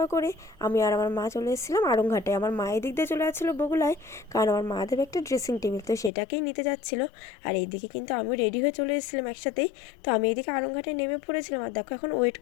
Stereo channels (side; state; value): right; drops out; at 6.1 s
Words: করে আমি আর আমার মা চলে এসেছিলাম আড়ংঘাটে। আমার মা এদিক দিয়ে চলে যাচ্ছিলো বগুলায়, কারণ আমার মা দেবে একটা ড্রেসিং টেবিল, তো সেটাকেই নিতে যাচ্ছিল। আর এইদিকে কিন্তু আমিও রেডি হয়ে চলে এসেছিলাম একসাথেই। তো আমি এইদিকে আড়ংঘাটে নেমে পড়েছিলাম। আর দেখো, এখন ওয়েট